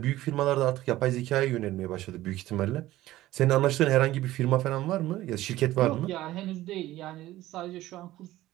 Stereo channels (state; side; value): quieter; left; 15.7 dB